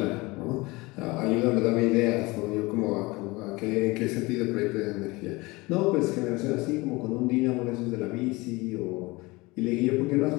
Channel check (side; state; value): right; quieter; 23.1 dB